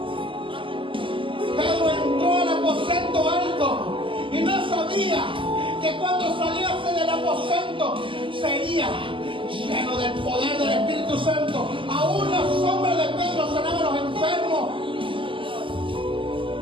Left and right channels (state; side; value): late; left; 0.25 ms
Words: Pedro entró al aposento alto y no sabía que cuando saliese del aposento sería lleno del poder del Espíritu Santo. Aún la sombra de Pedro sanaba a los enfermos.